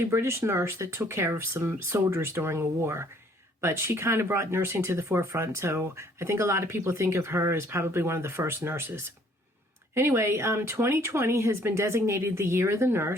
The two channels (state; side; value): normal; both; correlation 0.61